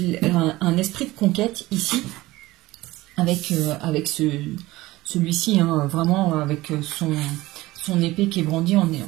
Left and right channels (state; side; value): quieter; left; 18.6 dB